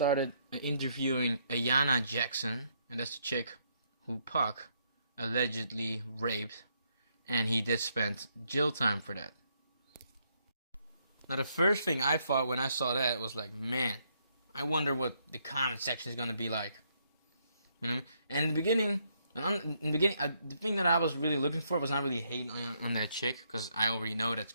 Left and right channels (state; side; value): inverted; both; correlation -0.74